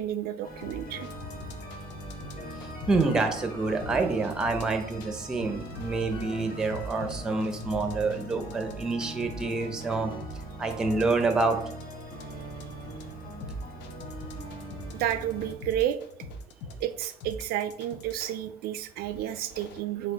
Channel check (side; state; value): left; quieter; 3.9 dB